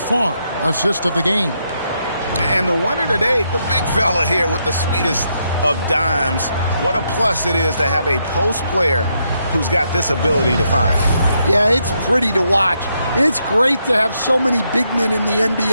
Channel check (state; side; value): inverted; both; correlation -0.79